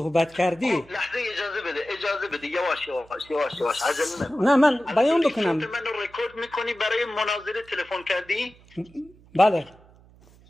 کردی، لحظه اجازه بده یواش عجله نکن. نه من بیان بکنم. من رو رکورد میکنی برای مناظره تلفن کردی؟ بله.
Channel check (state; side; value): noise; right; hum, 26 dB below the sound